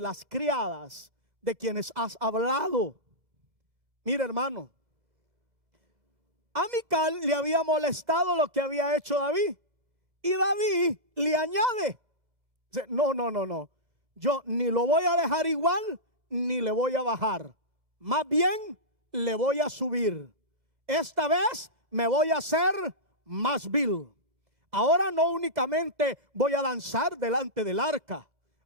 criadas de quienes has hablado. Mira, hermano, a Mical le había molestado lo que había hecho David, y David le añade: no, yo ni lo voy a dejar igual ni le voy a bajar, más bien le voy a subir. Esta vez me voy a hacer más vil. Ahora no únicamente voy a danzar delante del arca,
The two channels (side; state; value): left; late; 1.7 ms